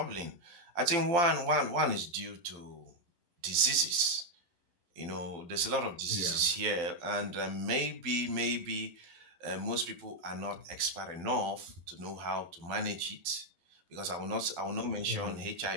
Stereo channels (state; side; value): late; left; 12 ms